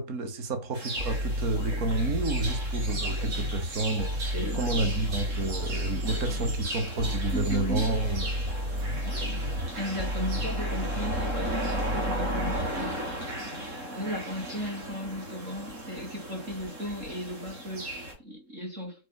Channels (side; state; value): left; late; 3.7 ms